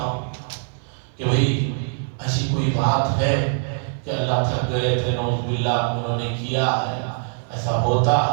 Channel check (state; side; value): silent; left; digital silence